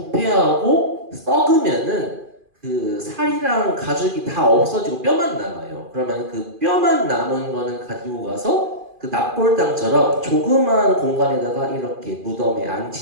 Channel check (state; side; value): late; left; 2.4 ms